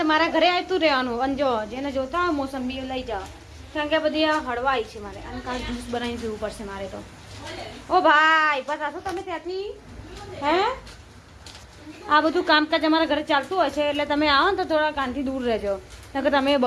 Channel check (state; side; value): identical; both; correlation 1.00